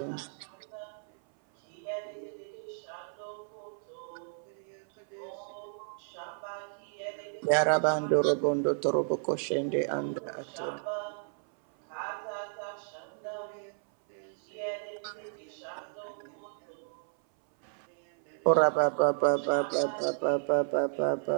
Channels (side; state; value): left; silent; 56 dB below the other